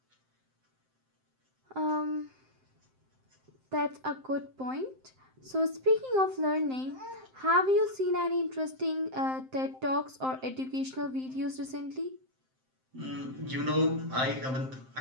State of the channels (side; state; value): left; late; 7.7 ms